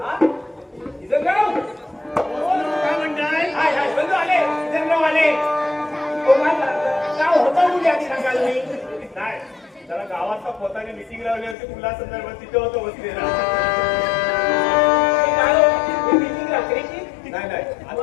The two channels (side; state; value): right; drops out; at 11.6 s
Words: किसनराव काय म्हणताय? बंधू आले किसनराव आले. काय होतं कुठे आधी सांगाल मी नाही त्याला गावात पोताने मिटिंग लावली होती मुला संदर्भात तिथे होतो बसलेला. मिटिंग रात्रीची नाही